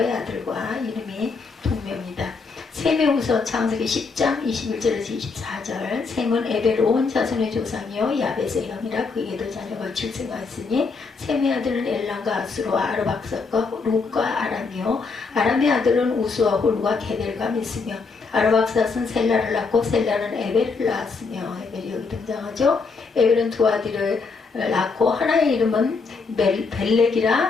아들과 이름이 동명이다. 셈의 후손 창세기 10장 21절에서 24절 셈은 에벨 온 자손의 조상이요 야벳의 형이라 그에게도 자녀가 출생하였으니 셈의 아들은 엘람과 아수르와 아르박삭과 룻과 아람이요 아람의 아들은 우스와 홀과 게델과 미스며 아르박삭은 셀라를 낳고 셀라는 에벨을 낳았으며 에벨이 여기 등장하죠. 에벨은 두 아들을 낳고 하나의 이름은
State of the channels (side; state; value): right; quieter; 4.5 dB